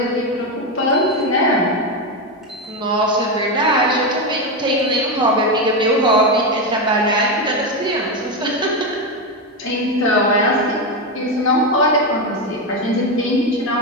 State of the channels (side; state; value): both; normal; correlation 0.11